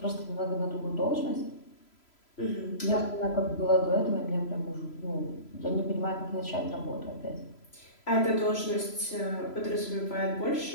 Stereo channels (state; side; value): late; right; 3.0 ms